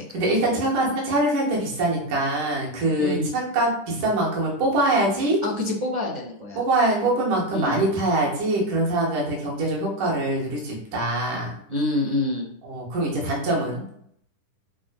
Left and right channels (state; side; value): late; left; 10 ms